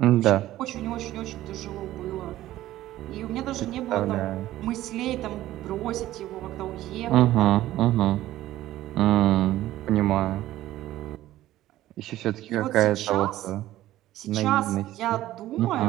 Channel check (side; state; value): left; quieter; 14.7 dB